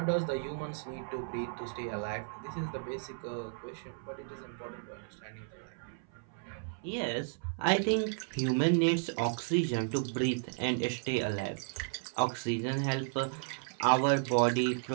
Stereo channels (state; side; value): silent; left; 55 dB below the other